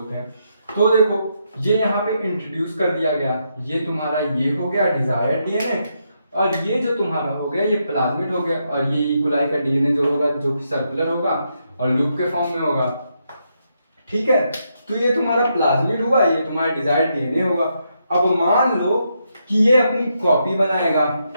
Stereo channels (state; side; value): inverted; both; correlation -0.80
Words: हैं। तो देखो ये यहाँ पे इंट्रोड्यूस कर दिया गया, ये तुम्हारा ये हो गया डिजायर्ड डीएनए और ये जो तुम्हारा हो गया ये प्लाज्मिड हो गया और ये इकोलाई का डीएनए जो होगा जो कि सर्कुलर होगा और लूप के फॉर्म में होगा, ठीक है। तो ये तुम्हारा प्लाज्मिड हुआ, ये तुम्हारा डिजायर्ड डीएनए होगा। अब मान लो कि ये अपनी कॉपी बनाएगा,